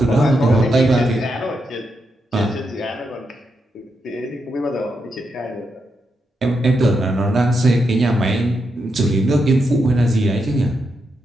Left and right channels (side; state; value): both; normal; correlation 0.83